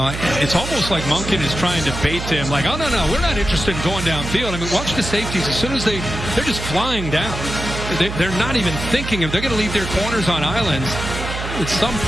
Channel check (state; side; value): noise; right; hum, 7 dB below the sound